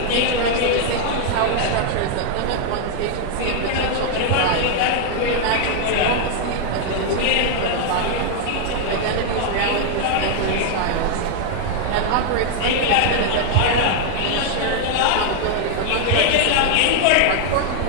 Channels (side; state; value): both; different; correlation 0.00